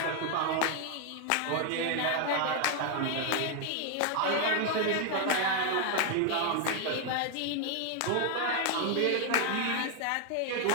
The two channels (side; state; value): both; different; correlation 0.01